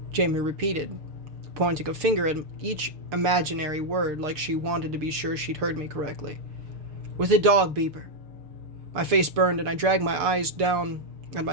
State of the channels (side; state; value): left; late; 6.6 ms